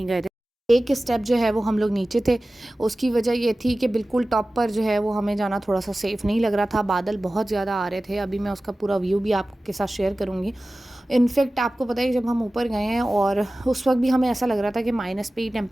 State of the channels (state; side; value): normal; both; correlation 0.96